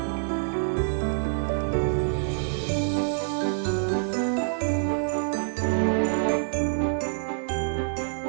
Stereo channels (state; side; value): silent; left; digital silence